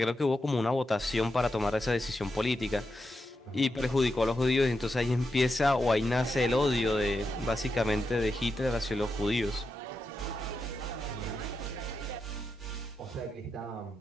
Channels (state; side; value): normal; both; correlation 0.87